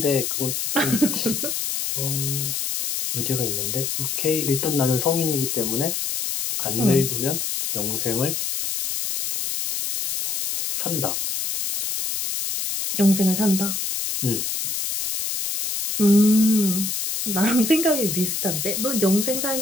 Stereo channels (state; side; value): noise; left; hiss, 2 dB below the sound